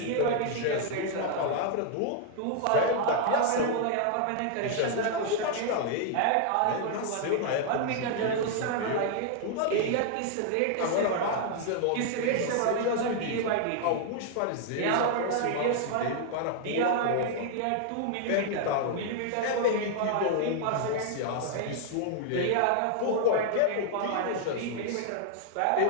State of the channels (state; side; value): different; both; correlation 0.00